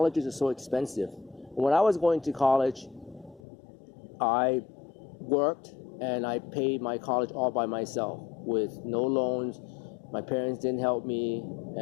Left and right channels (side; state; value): right; drops out; at 3.4 s